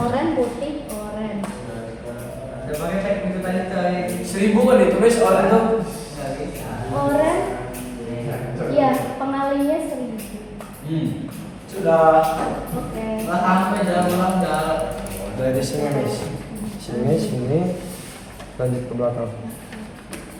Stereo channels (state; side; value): identical; both; correlation 1.00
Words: putih, orange. 1000 kan itu, Miss, orange tuh. Orange. Iya, pengalinya 1000. Sudah. Oke. Sampai dalam ulang jalan. Dari sini Miss. Sini. Lanjut ke belakang.